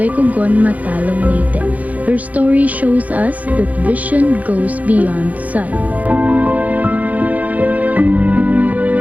Cogon, Matalom, Leyte. Her story shows us that vision goes beyond sight.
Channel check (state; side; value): late; left; 0.075 ms